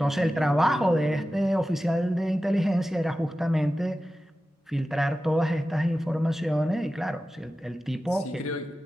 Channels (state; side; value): normal; both; correlation 0.94